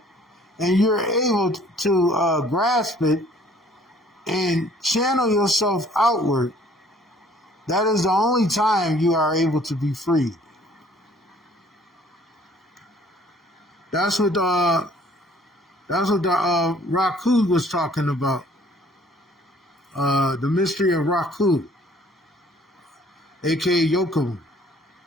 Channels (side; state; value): both; normal; correlation 0.57